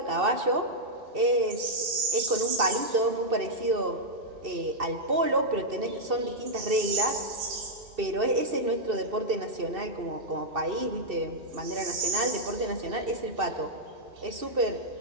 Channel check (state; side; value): late; left; 2.7 ms